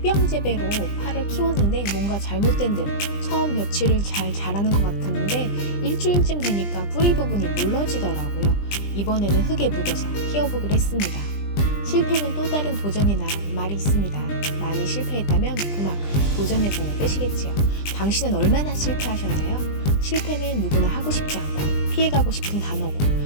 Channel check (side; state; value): right; late; 20 ms